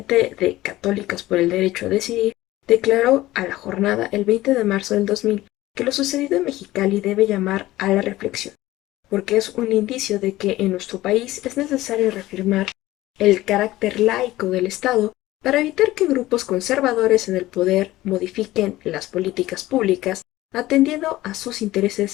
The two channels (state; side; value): quieter; right; 16.7 dB